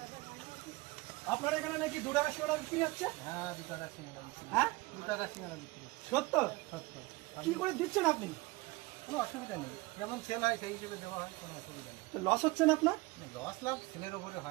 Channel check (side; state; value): left; quieter; 22.2 dB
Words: আপনার এখানে নাকি 2 টাকার সিঙ্গাড়া বিক্রি হচ্ছে? হ্যাঁ, 2 টাকার সিঙ্গাড়া বিক্রি। হ্যাঁ, 2 টাকার সিঙ্গাড়া বিক্রি। সত্য? সত্য। কি করে দিচ্ছেন আপনি? কোনো অসুবিধা নেই, যেমন সেল হয় সেই হিসেবে দেওয়া হয়, কোনো অসুবিধা নেই। লস হচ্ছে না আপনার? লস লাভ সেলের ওপরে